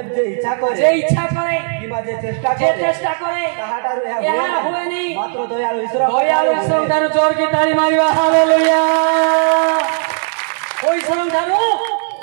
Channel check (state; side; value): silent; left; digital silence